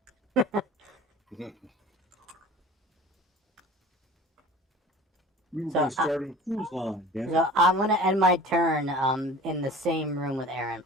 We were going to start a cruise line. Damn it. So I'm going to end my turn in the same room with Aaron.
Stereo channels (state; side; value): normal; both; correlation 0.42